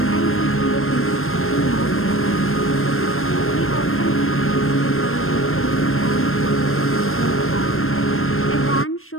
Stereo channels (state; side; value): late; right; 0.61 ms